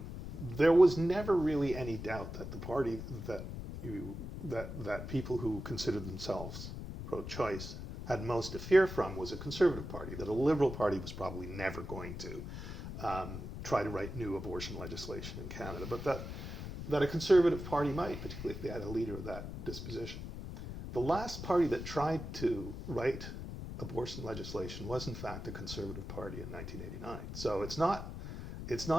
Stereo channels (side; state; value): left; noise; rumble, 8 dB below the sound